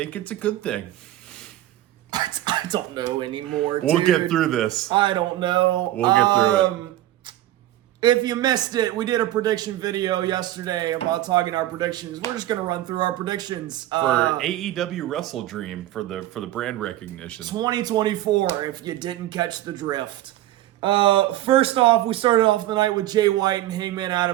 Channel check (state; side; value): quieter; left; 14.4 dB